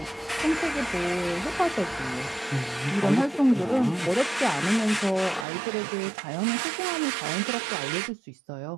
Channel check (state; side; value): drops out; left; at 5.5 s